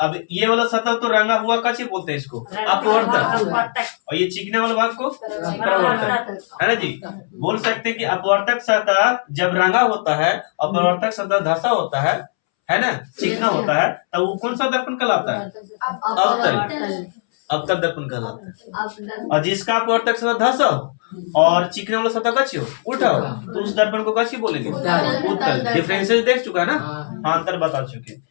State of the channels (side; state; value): right; silent; 66 dB below the other